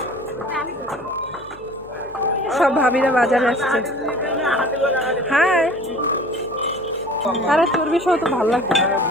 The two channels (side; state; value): left; noise; hum, 24 dB below the sound